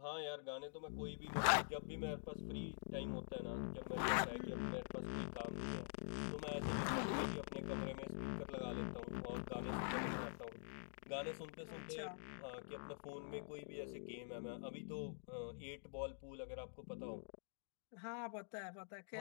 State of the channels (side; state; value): right; silent; digital silence